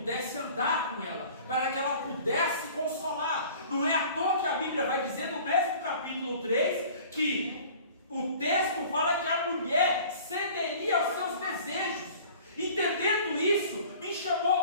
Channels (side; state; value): both; inverted; correlation -0.47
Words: andar com ela, para que ela pudesse consolar. Não é à toa que a Bíblia vai dizer no mesmo capítulo 3 que o texto fala que a mulher cederia aos seus desejos. Entendendo isso, me